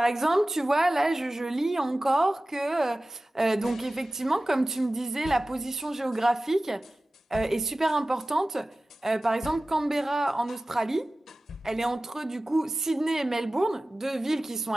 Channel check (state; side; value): normal; both; correlation 0.96